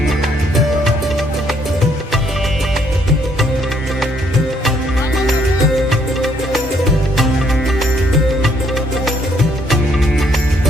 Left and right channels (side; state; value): both; normal; correlation 0.68